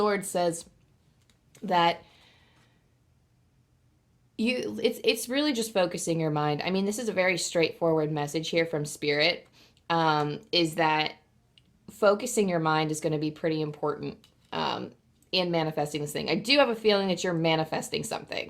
says that it's really just focusing your mind. I mean, this is a very straightforward message here from Spirit, is that focusing your mind is going to be pretty important in manifesting this thing. I do have a feeling that you're manifesting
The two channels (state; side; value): identical; both; correlation 1.00